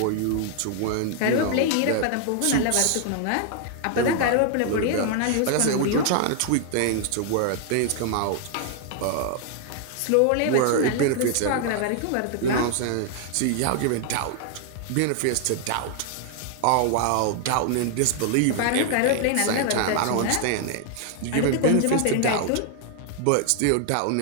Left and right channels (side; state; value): both; different; correlation 0.00